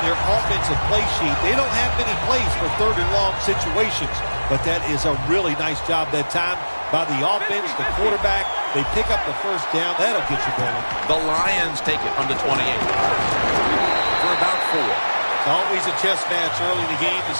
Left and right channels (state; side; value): inverted; both; correlation -1.00